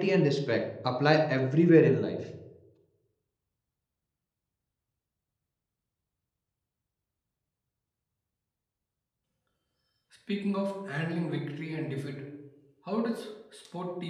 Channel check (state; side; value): identical; both; correlation 1.00